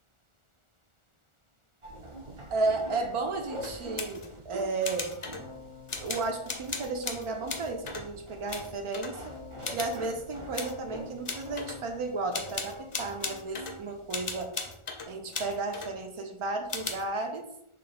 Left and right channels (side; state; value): left; late; 1.4 ms